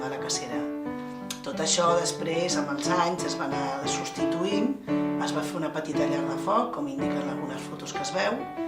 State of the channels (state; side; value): identical; both; correlation 1.00